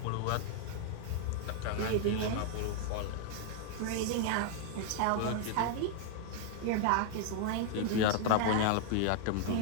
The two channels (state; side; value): different; both; correlation 0.00